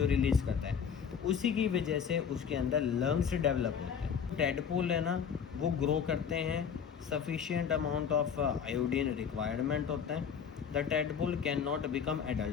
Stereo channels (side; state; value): right; quieter; 7.2 dB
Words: रिलीज़ करता है उसी की वजह से उसके अंदर लंग्स डेवलप होते हैं। टेडपोल है ना वो ग्रो करते हैं, sufficient amount of iodine requirement होता है। The tadpole can not become